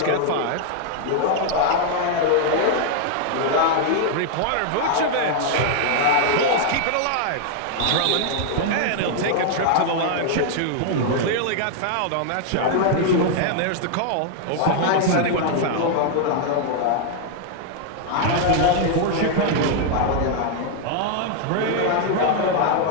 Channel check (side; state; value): both; different; correlation 0.00